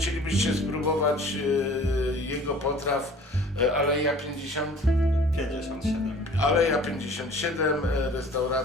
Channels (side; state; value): both; normal; correlation 0.48